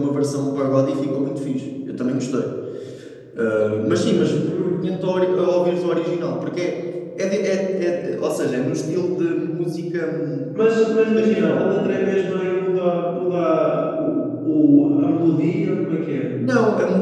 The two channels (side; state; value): both; identical; correlation 1.00